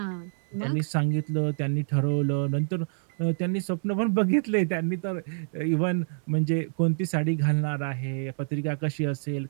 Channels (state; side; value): silent; left; digital silence